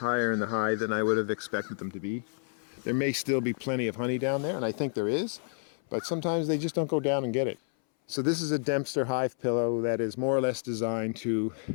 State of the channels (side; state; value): right; silent; 58 dB below the other